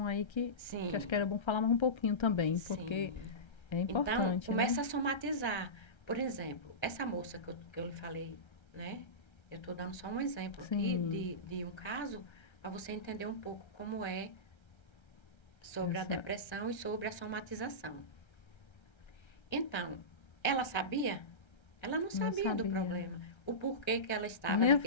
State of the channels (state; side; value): late; right; 1.3 ms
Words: aí que acho que Sim, era bom falar mais um pouquinho também, porque sim. é Então, importante, começa né? a somatizar. Por exemplo, essa moça que eu lhe falei, né? Eu estou dando só um exemplo aqui Sim, de um caso para você entender um pouco como é sobre a essa, depressão e sobre a somatização. Então, ela sabia? Ela não não sabia do sabia. problema. O porquê que ela estava Nem a